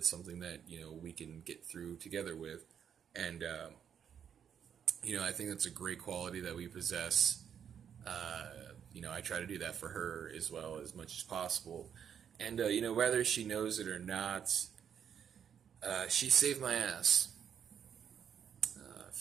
something that, we can get through together with. And, I think that's a great quality that we possess. I try to do that for her as well as much as possible. And, whether she knows it or not, she saved my ass.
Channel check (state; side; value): quieter; left; 8.2 dB